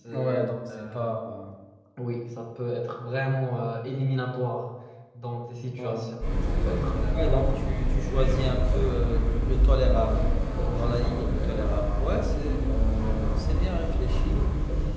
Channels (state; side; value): identical; both; correlation 1.00